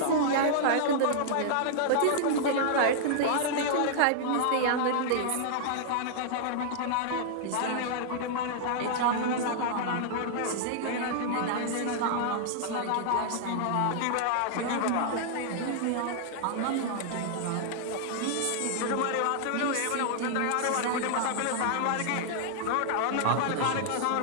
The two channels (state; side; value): different; both; correlation -0.01